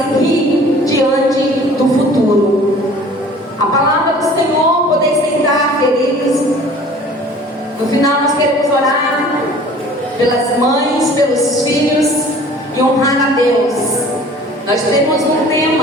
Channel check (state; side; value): normal; both; correlation 0.48